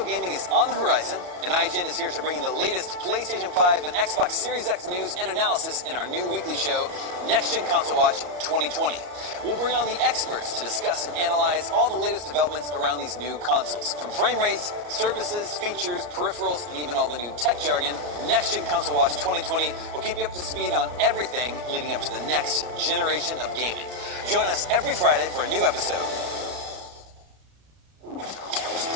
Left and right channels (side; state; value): left; late; 34 ms